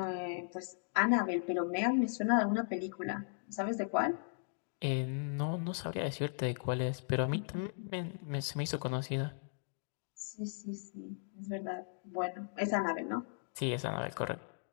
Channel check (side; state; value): right; silent; digital silence